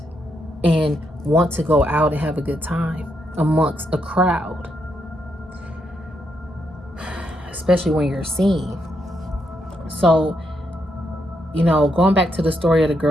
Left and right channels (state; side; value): normal; both; correlation 0.79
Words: and want to go out and have a good time amongst a crowd, especially when you're seen. So, you know, going back to the story of the